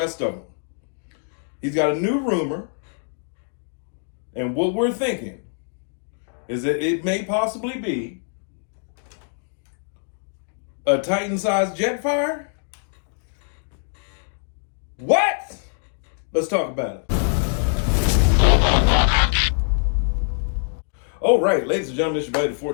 of them. He's got a new rumor, and what we're thinking is that it may possibly be a Titan-sized Jetfire. What? Let's talk about it. All right, ladies and gentlemen, it's your buddy, the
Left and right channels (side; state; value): right; silent; digital silence